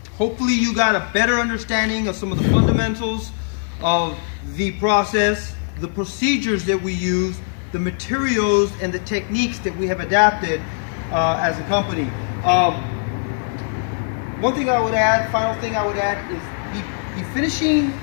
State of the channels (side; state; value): right; silent; 65 dB below the other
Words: Hopefully you got a better understanding of some of the fundamentals of the process, the procedures that we use, the materials and the techniques that we have adapted as a company. One thing I would add, final thing I would add, is the finishing